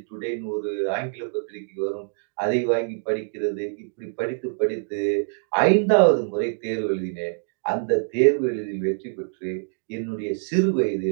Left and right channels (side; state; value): left; silent; digital silence